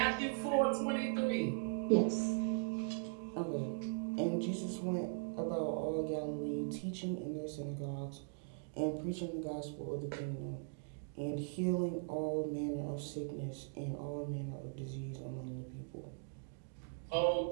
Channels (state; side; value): silent; left; digital silence